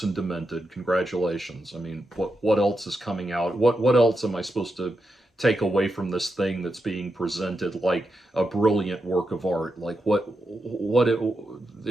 and demented. Congratulations. I mean, what else is coming out? What else am I supposed to take away from this thing that's being presented like a brilliant work of art? Like,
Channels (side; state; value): both; normal; correlation 0.87